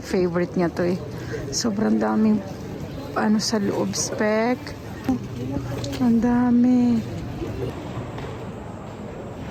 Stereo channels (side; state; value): both; identical; correlation 1.00